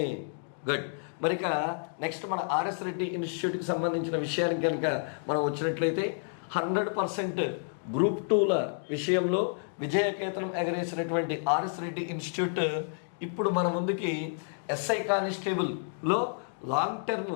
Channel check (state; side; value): silent; right; digital silence